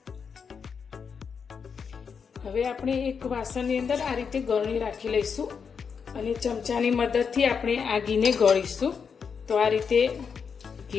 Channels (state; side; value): quieter; right; 6.2 dB